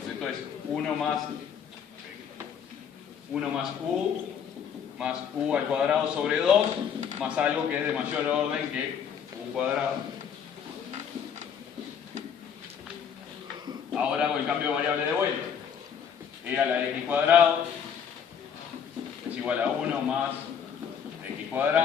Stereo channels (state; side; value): quieter; right; 7.6 dB